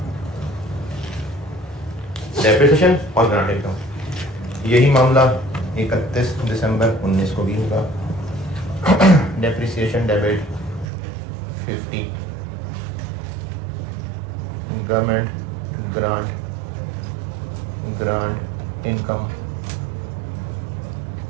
Depreciation और ग्रांट इनकम, यही मामला 31 दिसंबर 19 को भी होगा। Depreciation debit 50, government grant income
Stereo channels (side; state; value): left; drops out; at 10.9 s